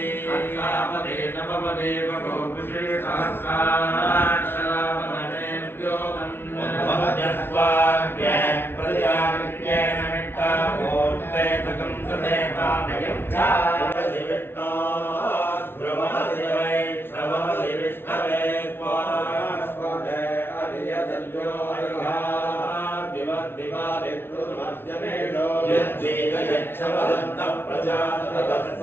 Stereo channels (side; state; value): right; late; 0.11 ms